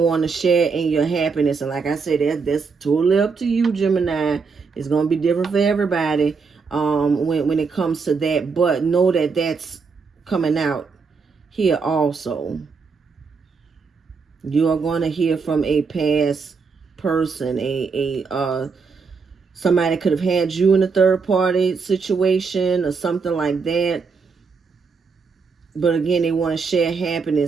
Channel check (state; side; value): quieter; left; 5.0 dB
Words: want to share in your happiness. And like I said, that's totally up to you, Gemini. It's going to be different for everybody when it comes to that. But know that that's coming out here also. You are going to hear from a past person, somebody could have had you in a third party situation or something like that. But again, they want to share